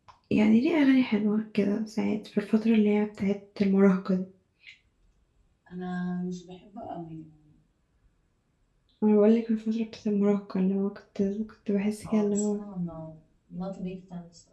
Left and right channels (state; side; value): identical; both; correlation 1.00